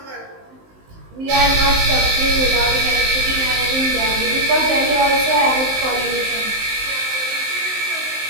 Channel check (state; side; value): late; left; 19 ms